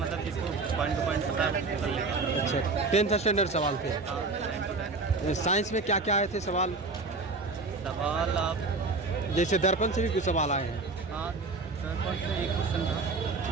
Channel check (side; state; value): left; quieter; 3.8 dB